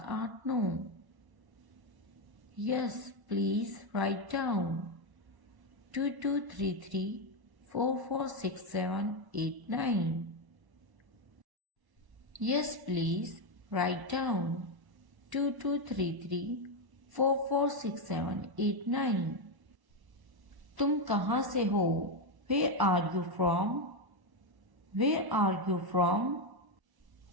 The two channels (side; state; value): left; late; 1.1 ms